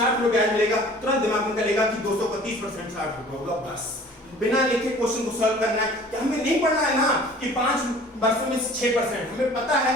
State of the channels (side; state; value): both; normal; correlation 0.48